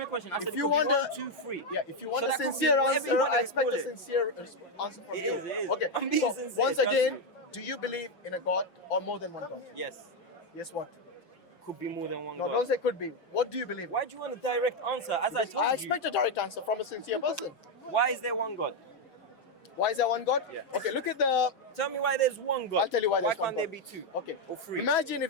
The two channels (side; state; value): right; late; 5.8 ms